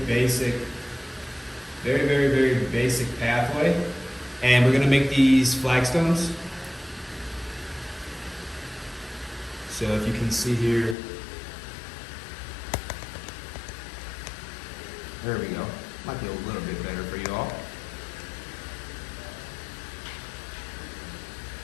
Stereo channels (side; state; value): right; drops out; at 11.0 s